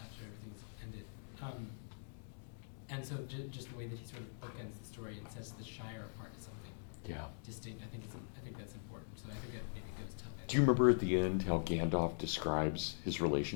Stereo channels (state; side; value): silent; right; digital silence